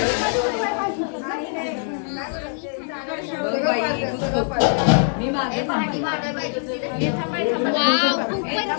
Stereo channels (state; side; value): silent; right; 64 dB below the other